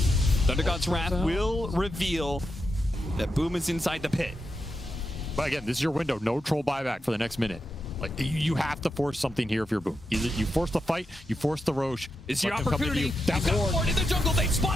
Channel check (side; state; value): both; normal; correlation 0.87